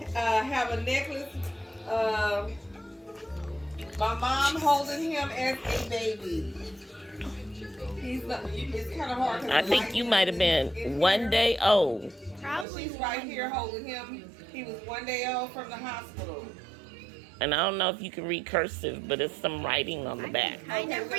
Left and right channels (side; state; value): left; drops out; at 12.7 s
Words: have a necklace. My mom holding him as a baby. It's kind of hard. I think you might have been 1 day old. She's right here holding him. He was 1 day old from the hospital. And I don't know if you can read cursive, but it's some writing on the back. Okay, so